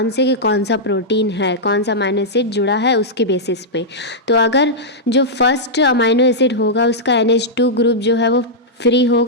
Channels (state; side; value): normal; both; correlation -0.09